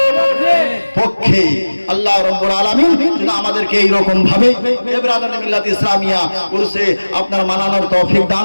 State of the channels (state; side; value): inverted; both; correlation -1.00